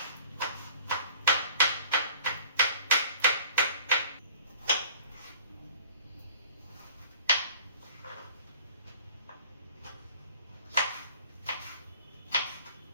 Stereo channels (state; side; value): inverted; both; correlation -0.50